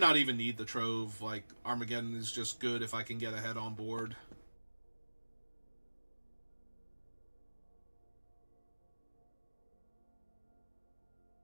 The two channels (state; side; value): inverted; both; correlation -1.00